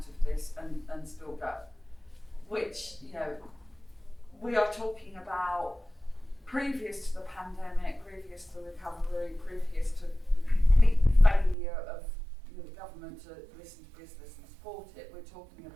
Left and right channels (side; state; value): left; drops out; at 11.6 s